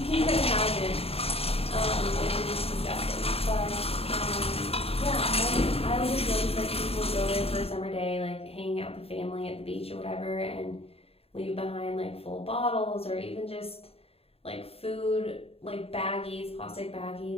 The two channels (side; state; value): right; late; 0.28 ms